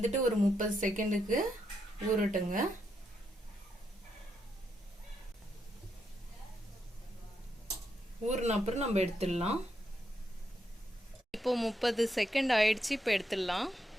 ஒரு 30 செகண்டுக்கு ஊறட்டுங்க. ஊறின அப்புறம் நம்ம எடுத்துடலாம். இப்போ 30 செகண்ட் ஆயிடுச்சு. இப்போ எடுத்துடலாம்.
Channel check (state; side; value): normal; both; correlation 0.80